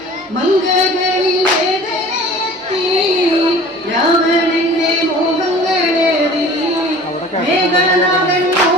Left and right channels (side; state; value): both; normal; correlation 0.45